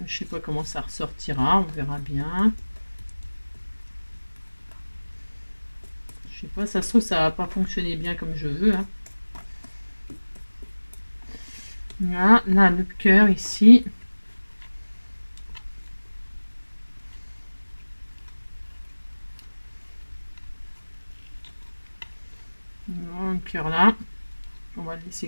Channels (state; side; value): inverted; both; correlation -1.00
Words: Je sais pas comment ça ressortira, on verra bien. Je sais pas, ça se trouve ça va pas fonctionner bien comme je veux. Hein. Là, le cœur ici. Le cœur là. On va le